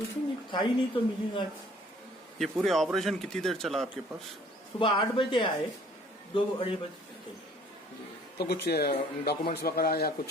नहीं था ही नहीं तो मिलेगा। ये पूरे ऑपरेशन कितनी देर चला आपके पास? सुबह 8 बजे आए, 2-2:30 बजे तक। तो कुछ डॉक्यूमेंट्स वगैरह या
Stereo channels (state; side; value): normal; both; correlation 0.57